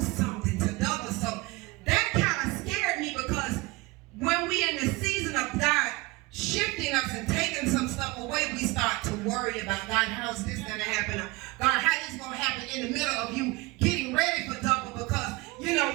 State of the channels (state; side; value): quieter; left; 22.7 dB